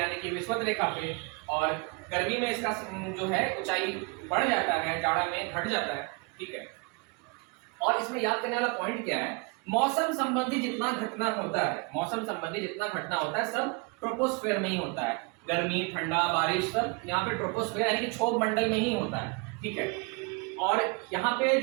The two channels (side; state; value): left; quieter; 30.3 dB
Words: कि विषुवत रेखा पे, और गर्मी में इसका जो है ऊंचाई बढ़ जाता है, जाड़ा में घट जाता है, ठीक है। और इसमें याद करने वाला पॉइंट क्या है? मौसम संबंधी जितना घटना होता है सब ट्रोपोस्फेयर में ही होता है। गर्मी, ठंडा, बारिश सब यहाँ पे ट्रोपोस्फेयर यानी कि क्षोभ मंडल में ही होता है, ठीक है। और यहाँ पे